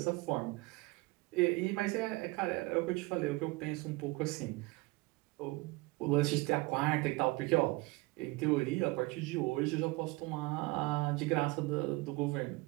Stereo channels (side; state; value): left; quieter; 22.7 dB